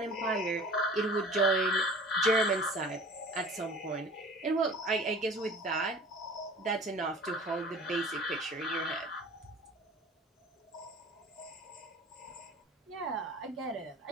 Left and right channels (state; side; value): normal; both; correlation 0.44